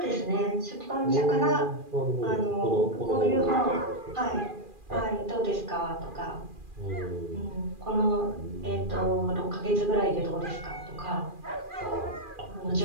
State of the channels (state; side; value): late; left; 2.4 ms